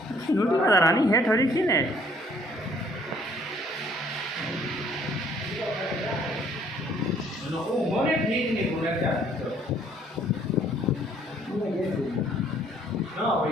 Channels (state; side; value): normal; both; correlation 0.61